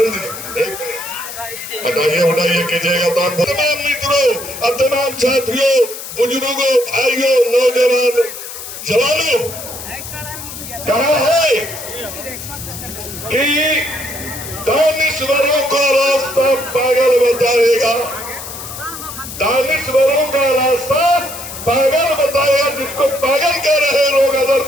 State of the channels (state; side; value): noise; left; hiss, 10 dB below the sound